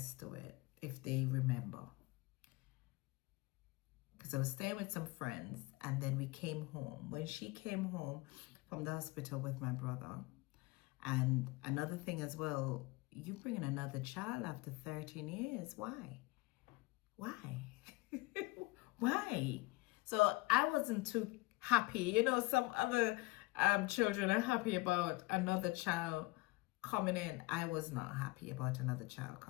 to it if they remember. Because I was staying with some friends and then we came home. When she came home from the hospital with my brother, and another thing as well, you bringing another child after 13 years. Why? Why? Why? So I wasn't too happy. You know, some other children are happy about another child coming in. I was not happy about another child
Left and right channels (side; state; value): right; quieter; 22.9 dB